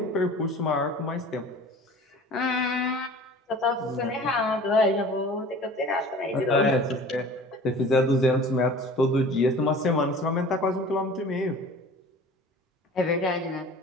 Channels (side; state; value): both; normal; correlation 0.43